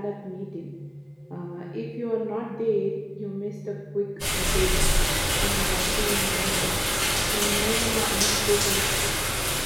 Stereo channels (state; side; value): identical; both; correlation 1.00